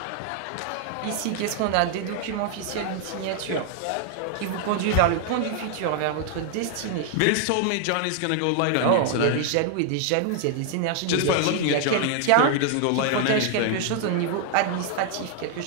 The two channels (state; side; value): different; both; correlation 0.00